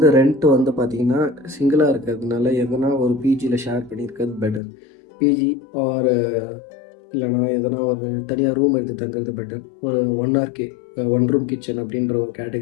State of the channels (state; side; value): drops out; right; at 4.6 s